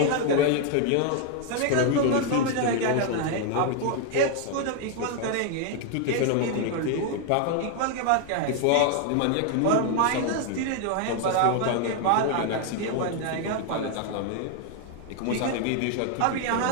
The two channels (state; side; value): different; both; correlation 0.00